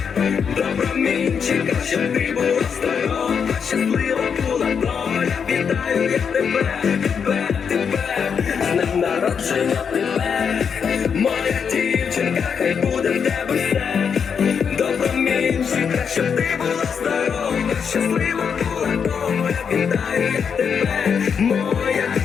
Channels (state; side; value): quieter; right; 6.7 dB